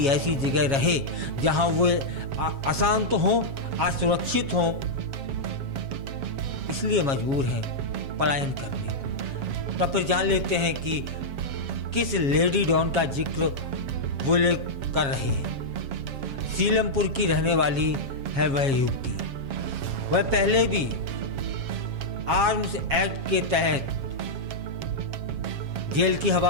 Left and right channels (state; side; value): late; left; 7.3 ms